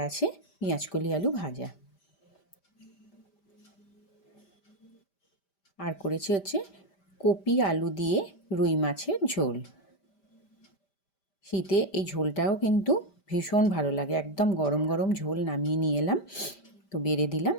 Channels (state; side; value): late; right; 5.1 ms